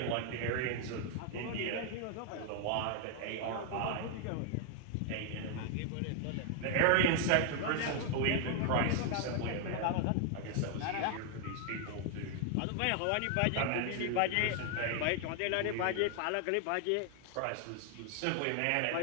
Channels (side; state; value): both; different; correlation 0.00